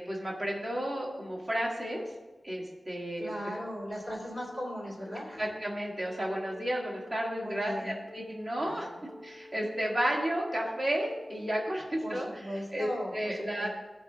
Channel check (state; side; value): normal; both; correlation 0.95